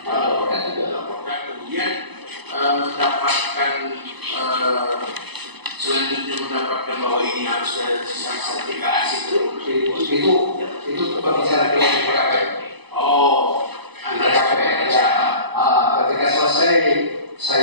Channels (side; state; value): left; late; 0.99 ms